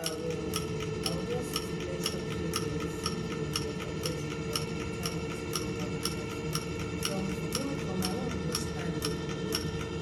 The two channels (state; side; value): identical; both; correlation 1.00